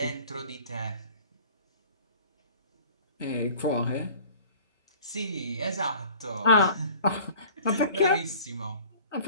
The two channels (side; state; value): both; inverted; correlation -0.47